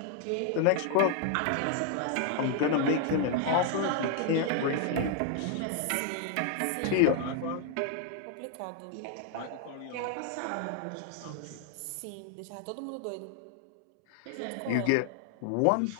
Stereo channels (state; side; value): different; both; correlation 0.00